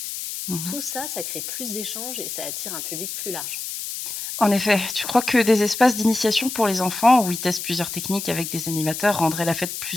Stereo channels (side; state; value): left; noise; hiss, 6 dB below the sound